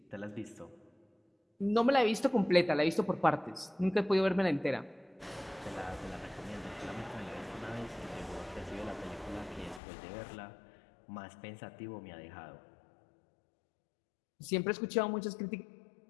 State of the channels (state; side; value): drops out; right; at 9.8 s